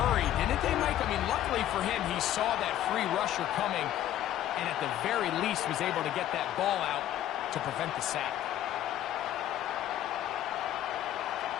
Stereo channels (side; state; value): right; quieter; 12.3 dB